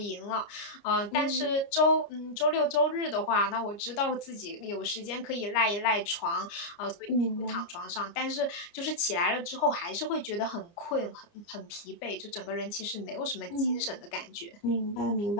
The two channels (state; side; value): late; right; 29 ms